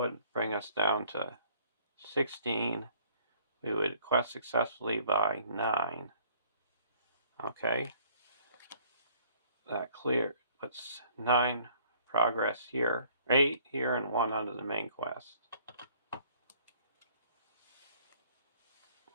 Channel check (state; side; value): inverted; both; correlation -0.57